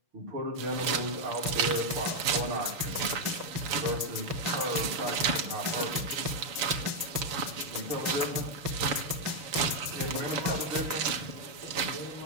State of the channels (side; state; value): left; late; 6.9 ms